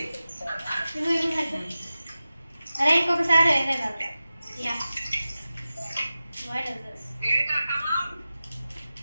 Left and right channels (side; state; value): both; inverted; correlation -0.94